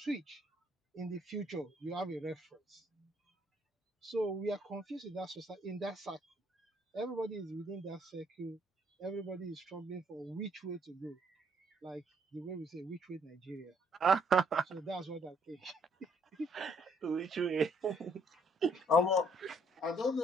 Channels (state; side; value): normal; both; correlation 0.66